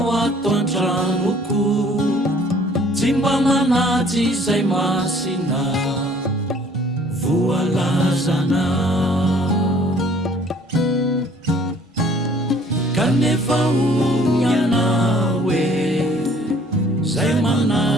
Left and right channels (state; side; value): normal; both; correlation 0.57